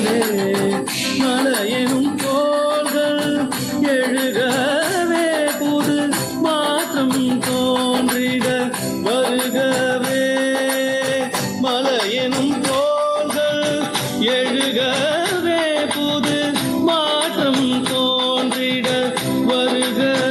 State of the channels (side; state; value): both; identical; correlation 1.00